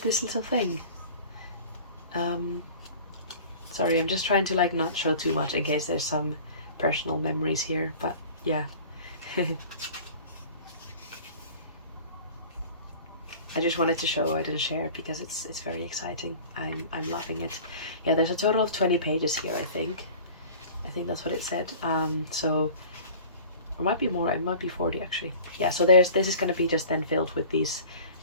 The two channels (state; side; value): inverted; both; correlation -0.43